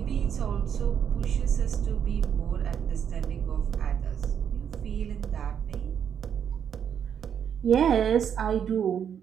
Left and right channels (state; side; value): quieter; left; 8.3 dB